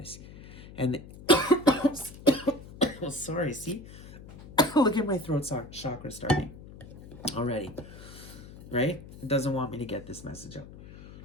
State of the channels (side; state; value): left; noise; hum, 16 dB below the sound